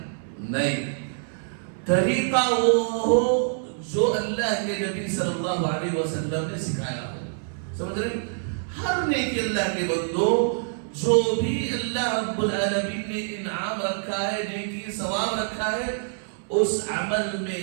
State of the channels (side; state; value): left; silent; 61 dB below the other